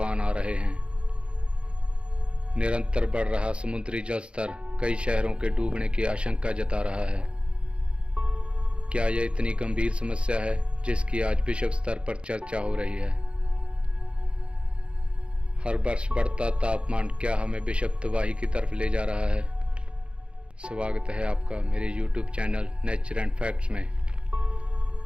आ रहे हैं। निरंतर बढ़ रहा समुद्री जल स्तर कई शहरों के डूबने की आशंका जता रहा है। क्या यह इतनी गंभीर समस्या है जिसकी आज विश्व स्तर पर चर्चा हो रही है? हर वर्ष बढ़ता तापमान क्या हमें विश्व तबाही की तरफ ले जा रहा है? स्वागत है आपका मेरे YouTube channel nature and facts में।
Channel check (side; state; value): left; late; 0.057 ms